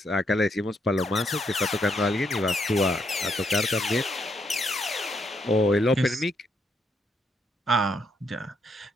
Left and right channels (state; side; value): normal; both; correlation 0.76